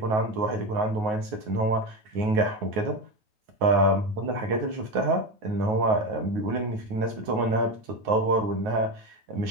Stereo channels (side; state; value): left; late; 9.4 ms